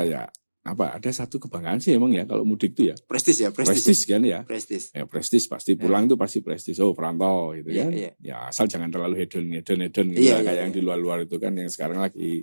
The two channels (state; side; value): inverted; both; correlation -1.00